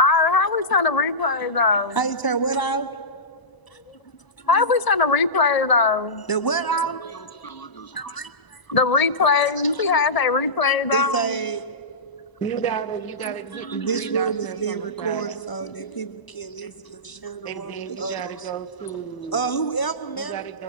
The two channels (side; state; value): right; late; 1.0 ms